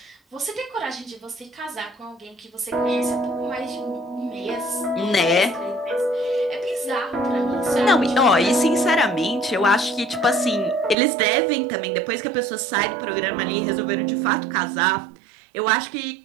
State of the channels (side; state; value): left; drops out; at 11.0 s